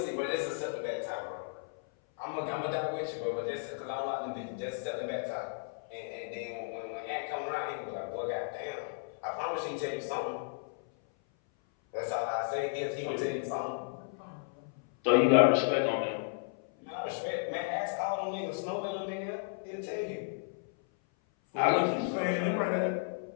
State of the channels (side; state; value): right; silent; 55 dB below the other